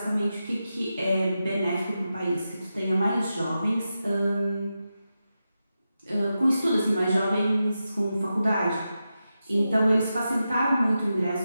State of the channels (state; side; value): inverted; both; correlation -0.90